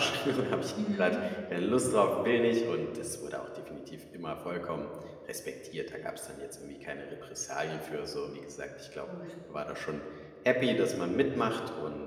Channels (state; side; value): identical; both; correlation 1.00